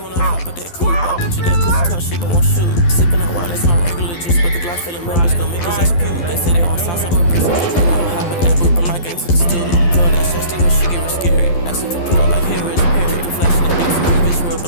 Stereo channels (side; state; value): right; late; 12 ms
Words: hop at that coupe. I bet you that pussy talk shit, but won't shoot. Sippin' on wine, that's my regular juice. But the Glock feelin' members gon' make his ass puke. They say they on sauce, I'ma bring some juice. I'ma hop in that booth, bring my gang to the stool. Girl, that shasty when she get real scary. Ask if I put up like Harris Perry. Flashing the dicks, my bitch real